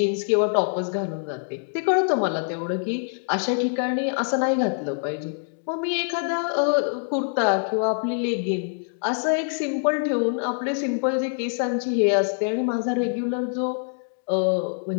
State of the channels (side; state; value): right; silent; digital silence